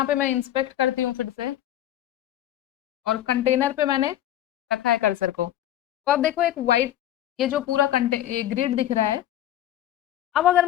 पे मैं इंस्पेक्ट करती हूँ फिर से, और कंटेनर पे मैंने रखा है कर्सर को। तो अब देखो एक वाइट, ये जो पूरा ग्रिड दिख रहा है। अब अगर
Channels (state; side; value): quieter; right; 12.4 dB